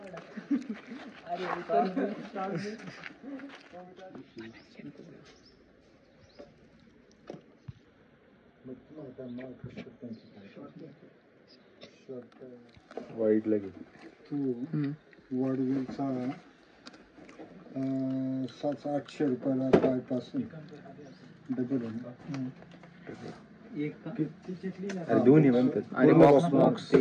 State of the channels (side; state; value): both; identical; correlation 1.00